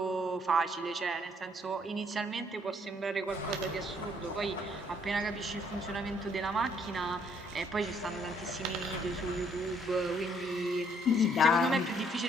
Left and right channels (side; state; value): both; normal; correlation 0.66